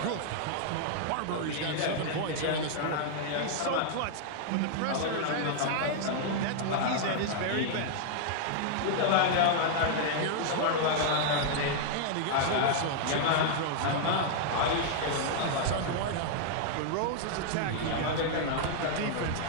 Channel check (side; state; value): both; different; correlation -0.01